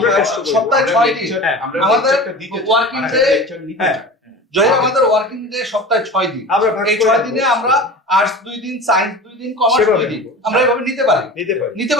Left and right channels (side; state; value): both; normal; correlation 0.35